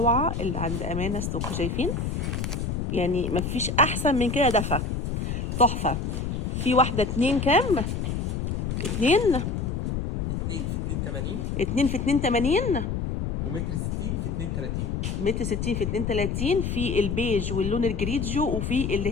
اللي عند امانه ستوك. شايفين؟ يعني مفيش احسن من كده، دفى تحفه. في واحده 2 كام؟ 2 في 82 2 في 82 ومتر 60 في 32. متر 60 في 32. في البيج واللون الجريجيو، وفي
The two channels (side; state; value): left; noise; rumble, 2 dB below the sound